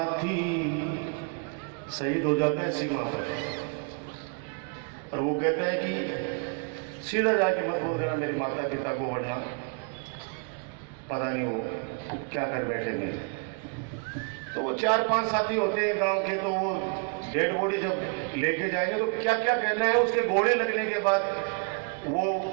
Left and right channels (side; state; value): left; quieter; 36.0 dB